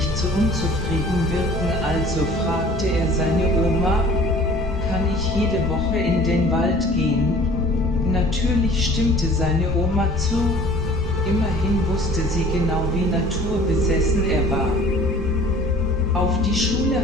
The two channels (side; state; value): both; normal; correlation 0.49